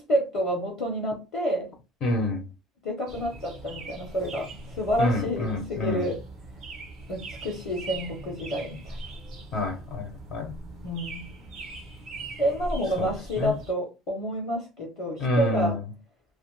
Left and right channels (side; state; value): both; normal; correlation 0.48